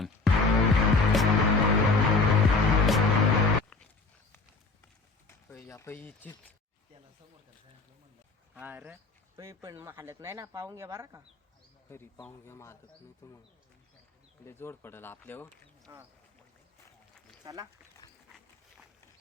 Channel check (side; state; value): right; quieter; 3.8 dB